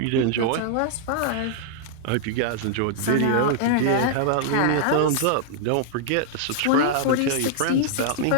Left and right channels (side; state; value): both; different; correlation -0.01